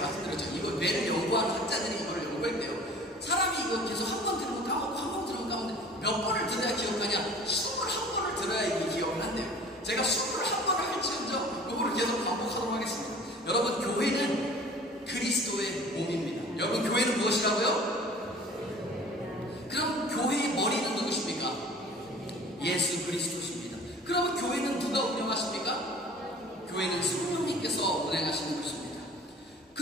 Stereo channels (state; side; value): normal; both; correlation 0.46